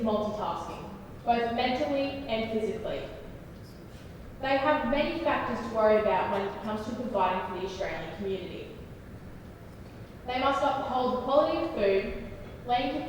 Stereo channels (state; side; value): identical; both; correlation 1.00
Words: multitasking, both mentally and physically. They have many factors to worry about when it comes to providing for the Australian community. They must uphold the quality of food, land